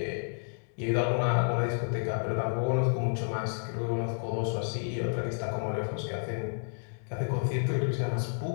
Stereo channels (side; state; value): right; silent; digital silence